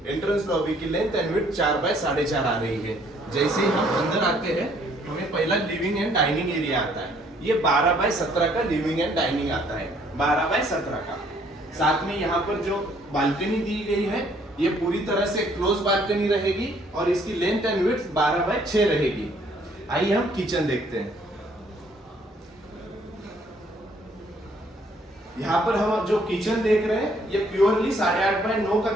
एंट्रेंस लॉबी की लेंथ एंड विड्थ 4 बाय 4.5 आ रही है। जैसे ही हम अंदर आते हैं हमें पहला लिविंग एंड डाइनिंग एरिया आता है। ये 12 बाय 17 का लिविंग एंड डाइनिंग आता है, 12 बाय 17 का। साथ में यहाँ पर जो बालकनी दी गई है ये पूरी तरह से क्लोज बालकनी रहेगी और इसकी लेंथ एंड विड्थ 12 बाय 6 रहेगी। आइए हम किचन देखते हैं। यहाँ पर हम जो किचन देख रहे हैं ये प्योरली 8.5 बाय 9 का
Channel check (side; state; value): both; normal; correlation 0.64